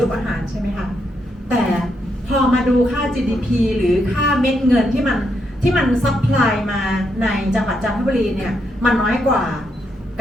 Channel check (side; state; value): both; normal; correlation 0.79